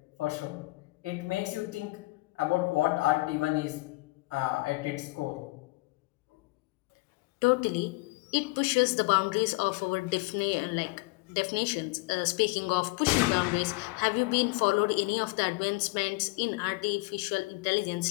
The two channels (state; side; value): quieter; right; 24.6 dB